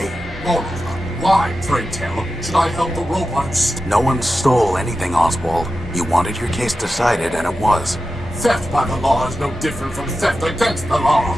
moreover, why, pray tell, should I help the robots? No one stole anything, Oswald. You wanted your case decided, and it was. Theft by the law is no different from theft against the law.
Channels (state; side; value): normal; both; correlation 0.92